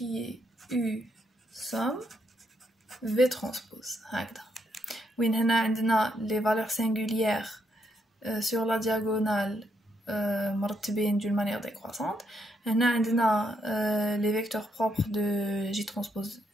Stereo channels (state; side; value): normal; both; correlation 0.77